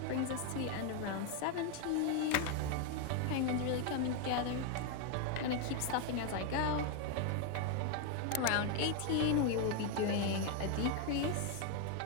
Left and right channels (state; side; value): different; both; correlation 0.01